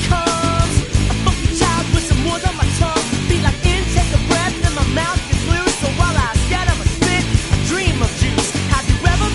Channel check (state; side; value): identical; both; correlation 1.00